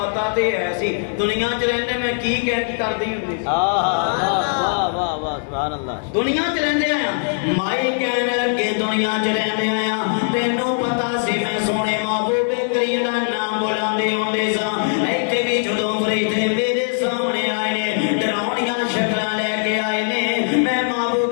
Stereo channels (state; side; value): silent; right; 65 dB below the other